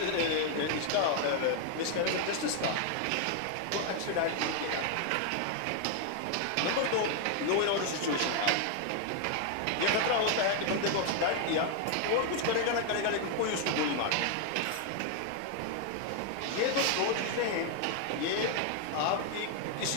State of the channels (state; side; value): different; both; correlation 0.00